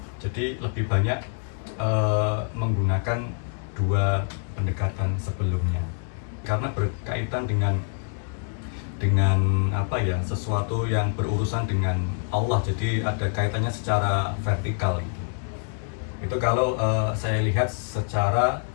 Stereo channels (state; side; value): silent; right; 61 dB below the other